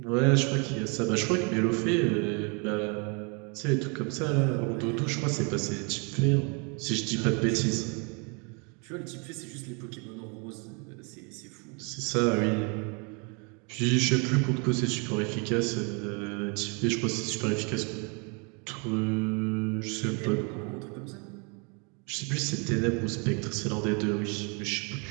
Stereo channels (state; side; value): quieter; left; 33.8 dB